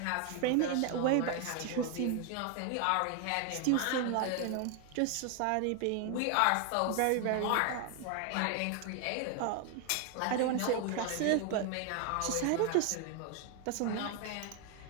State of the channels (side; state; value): both; different; correlation 0.01